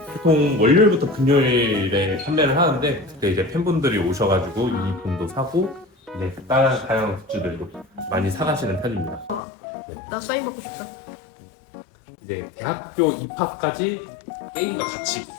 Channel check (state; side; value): drops out; right; at 9.4 s